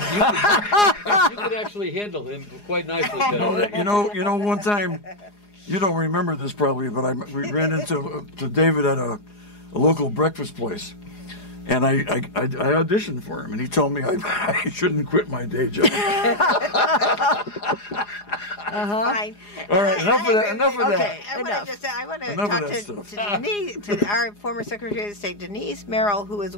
actually handle him quite nicely. One time, you don't remember this probably, but we ran into David at a local breakfast place, and I auditioned for him, and he told me I shouldn't quit my day job. Fine. All right, enough of that. Okay. I want to Enough of talk that to Denise, to our former Secretary of State, Denise Merrill, who has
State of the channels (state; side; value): late; right; 4.9 ms